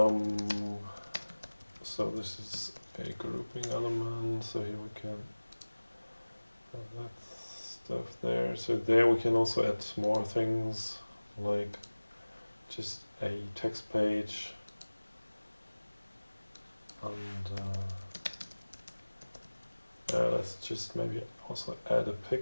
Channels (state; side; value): inverted; both; correlation -1.00